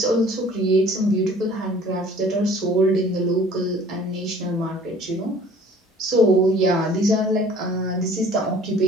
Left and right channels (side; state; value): both; normal; correlation 0.50